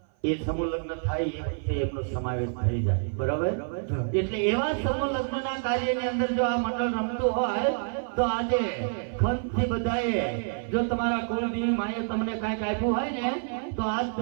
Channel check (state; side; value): silent; left; 55 dB below the other